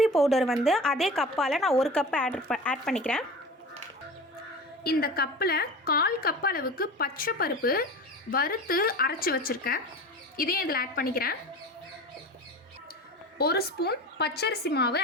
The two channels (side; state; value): both; normal; correlation 0.34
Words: பவுடர் வந்து அதே கப்பால் நான் 1 கப்பு ஆட் பண்ணிக்கிறேன். இந்த கப்பில் 1/4 கப் அளவுக்கு பச்சை பருப்பு வறுத்து அரைச்சி வச்சுருக்கேன். இதையும் இதில் ஆட் பண்ணிக்கிறேன். 1 ஸ்பூன் பச்சரிசி மாவு